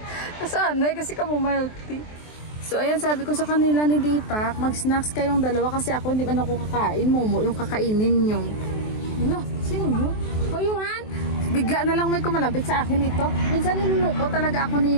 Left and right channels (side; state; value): right; late; 23 ms